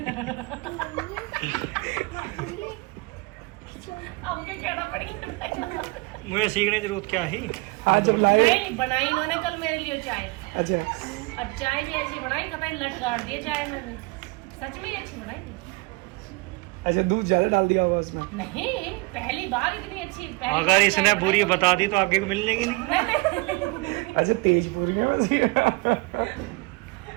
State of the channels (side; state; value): left; quieter; 26.2 dB